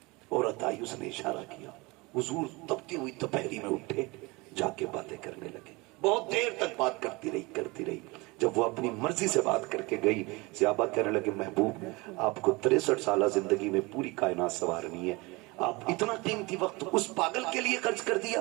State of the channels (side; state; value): left; quieter; 24.7 dB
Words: عورت آئی، اس نے اشارہ کیا، حضور تپتی ہوئی دوپہری میں اٹھے، جا کے باتیں کرنے لگے. بہت دیر تک بات کرتی رہی. جب وہ اپنی مرضی سے بات کر کے گئی، صحابہ کہنے لگے محبوب آپ کو 63 سالہ زندگی میں پوری کائنات سنوارنی ہے، آپ اتنا قیمتی وقت اس پاگل کے لیے خرچ کر دیا،